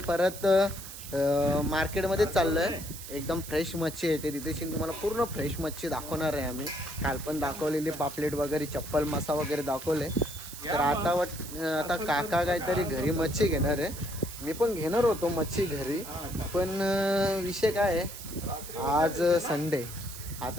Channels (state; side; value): noise; right; hiss, 12 dB below the sound